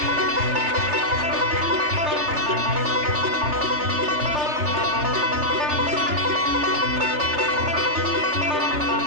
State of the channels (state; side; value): late; left; 3.3 ms